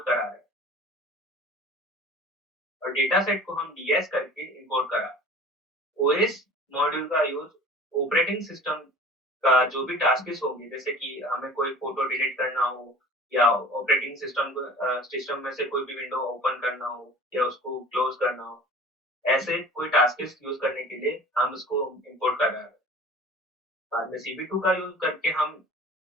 करा रहे हैं और डेटा सेट को हम डीएस करके इंपोर्ट करा रहे हैं। ओएस मॉड्यूल का यूज ऑपरेटिंग सिस्टम का जो भी टास्क होंगे, जैसे कि हमें कोई फोटो डिलीट करना हो या ऑपरेटिंग सिस्टम में से कोई भी विंडो ओपन करना हो या उसको क्लोज करना हो, ऐसे कोई टास्क यूज करने के लिए हम उसको इंपोर्ट कर रहे हैं। बाद में CV2 का यूज करके हम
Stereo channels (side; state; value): both; normal; correlation 0.44